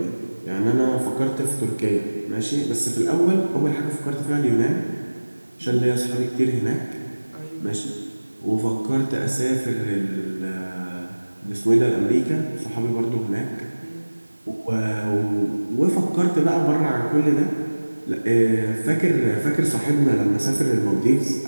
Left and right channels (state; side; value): inverted; both; correlation -1.00